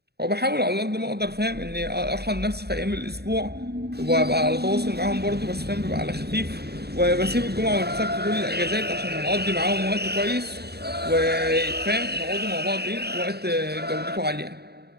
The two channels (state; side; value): late; left; 0.47 ms